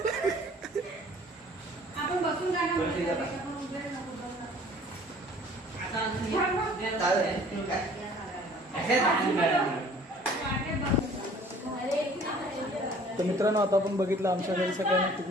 आपण बसून तर मित्रांनो आता आपण बघितलं आमच्या घरी सगळ्यांनी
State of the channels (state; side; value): normal; both; correlation 0.52